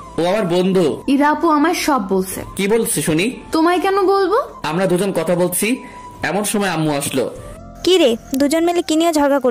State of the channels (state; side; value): identical; both; correlation 1.00